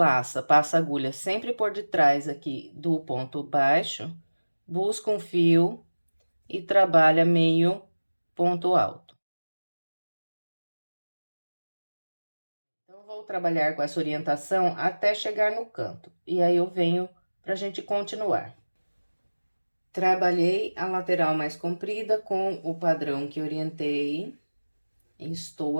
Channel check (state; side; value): inverted; both; correlation -1.00